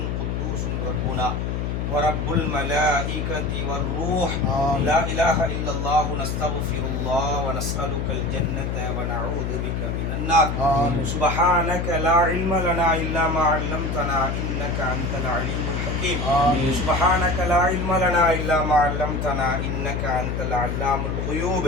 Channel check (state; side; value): noise; left; hum, 1 dB below the sound